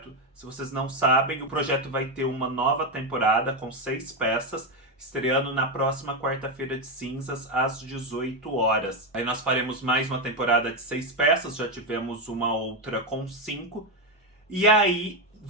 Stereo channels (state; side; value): normal; both; correlation 0.08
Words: Se vocês não sabem, o projeto vai ter uma nova temporada com 6 peças, estreando na próxima quarta-feira de cinzas, às 18 horas. Aí nós faremos mais uma temporada de 6 peças, já tivemos uma outra com 5. E aí